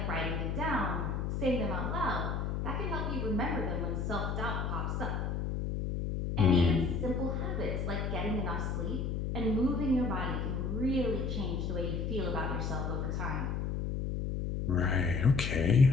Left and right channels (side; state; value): left; noise; hum, 1 dB below the sound